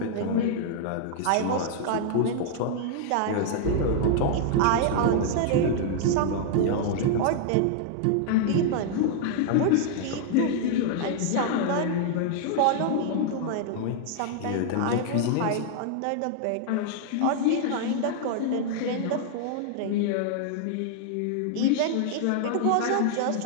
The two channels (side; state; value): both; different; correlation -0.01